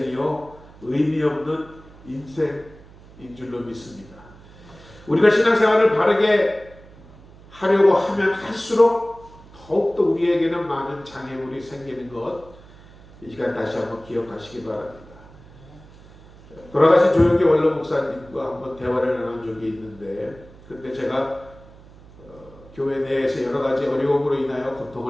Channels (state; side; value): noise; right; hum, 22 dB below the sound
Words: 의미 없는 인생인 줄로 믿습니다. 우리가 신앙생활을 바르게 하려고 하면 할수록 더욱더 우리에게는 많은 장애물이 생기는 것, 이 시간 다시 한번 기억하시기 바랍니다. 돌아가신 조용기 원로 목사님과 한번 대화를 나눈 적이 있는데 그때 제가 교회 내에서 여러 가지 어려움으로 인하여